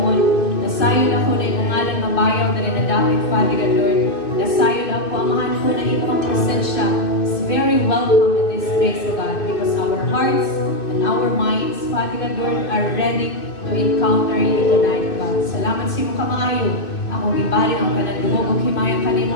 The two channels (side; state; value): right; late; 2.6 ms